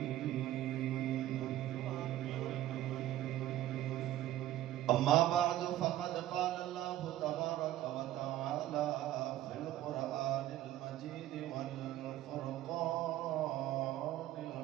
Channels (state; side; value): quieter; left; 13.7 dB